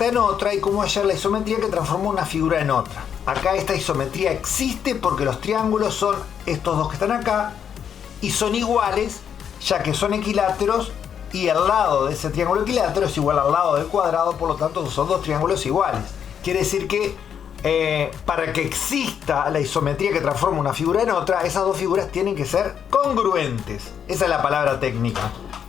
en otra y cómo hallar la isometría que transforma una figura en otra. Acá esta isometría existe porque los triángulos son estos dos que están acá y son iguales, ya que son equiláteros y el lado de ese triángulo equilátero es igual al lado del cuadrado, por lo tanto son dos triángulos iguales. Quiere decir que para que exista la isometría que transforma una figura en otra, esas dos figuras tienen que ser congruentes. Esa es la palabra técnica.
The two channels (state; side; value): quieter; right; 8.2 dB